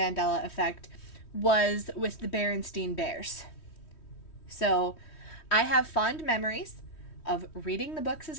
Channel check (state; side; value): late; right; 3.1 ms